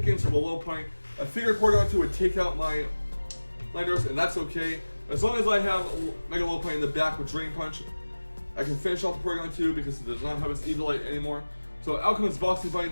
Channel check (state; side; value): inverted; both; correlation -1.00